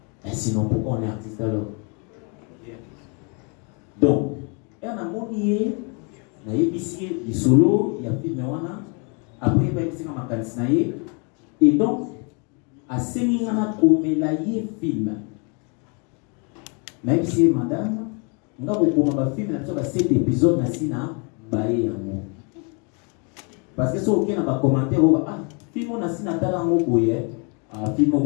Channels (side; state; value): right; quieter; 35.2 dB